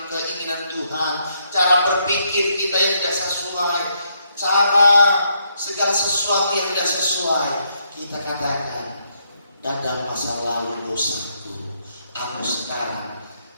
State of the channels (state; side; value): inverted; both; correlation -0.75